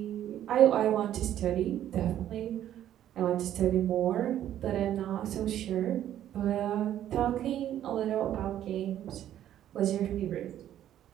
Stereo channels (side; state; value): left; quieter; 11.5 dB